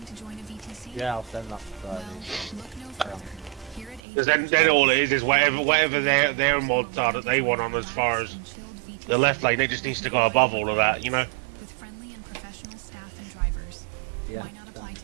to join a VTC? Yeah, I'll send that to Friday. Because then all it is whatever their mods are that they want on as far as the left lane. It just needs to go above all of that, you know. With friendly and professional staff and drivers. Yeah. Why not apply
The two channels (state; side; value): drops out; left; at 4.0 s